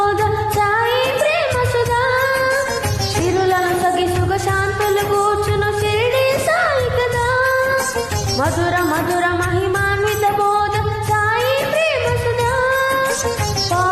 సాయి ప్రేమ సుధా సిరులను సగి సుగ శాంతులు కూర్చును షిరిడి సాయి కదా మధుర మధుర మహిమాన్విత బోధ సాయి ప్రేమ సుధా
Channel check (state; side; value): identical; both; correlation 1.00